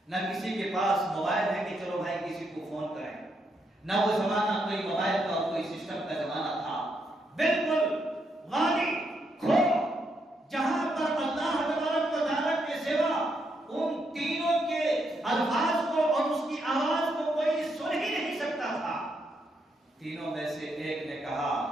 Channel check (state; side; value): normal; both; correlation 0.78